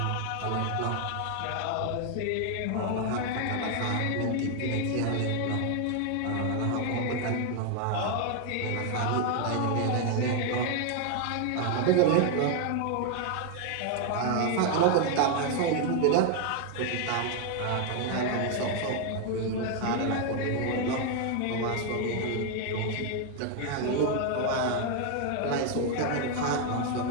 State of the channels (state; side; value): different; both; correlation 0.00